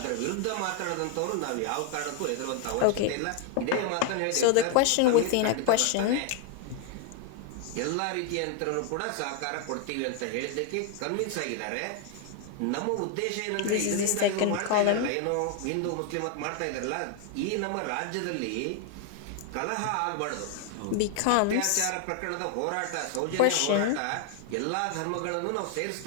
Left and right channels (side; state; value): both; different; correlation 0.01